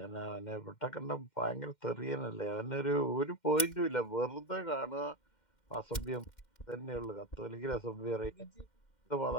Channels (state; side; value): late; right; 2.1 ms